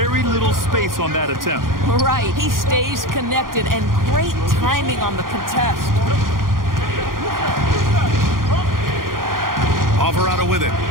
little space on that attempt. Right. He stays connected and great timing on the contest. Alvarado with it.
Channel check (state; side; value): late; left; 0.91 ms